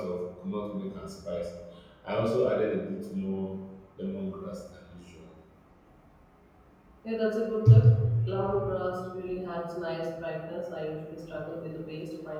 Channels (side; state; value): both; identical; correlation 1.00